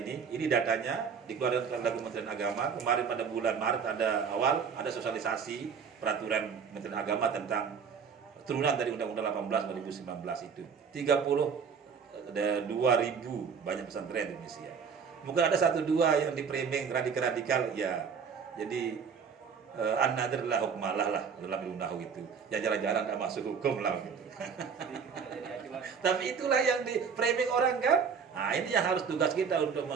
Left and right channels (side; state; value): left; quieter; 6.4 dB